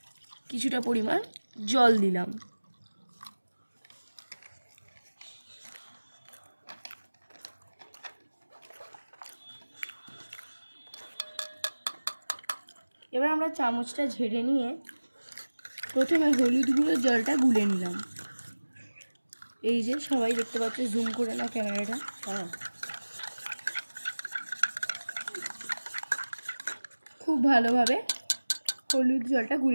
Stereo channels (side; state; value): both; inverted; correlation -1.00